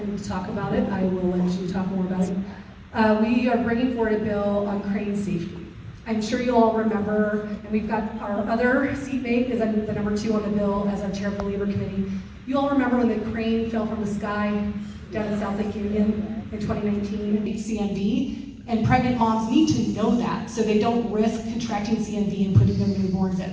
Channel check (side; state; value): both; identical; correlation 1.00